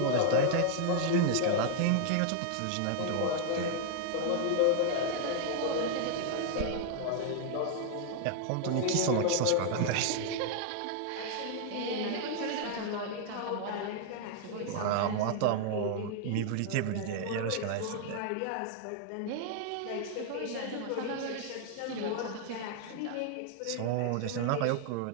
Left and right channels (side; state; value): both; different; correlation -0.01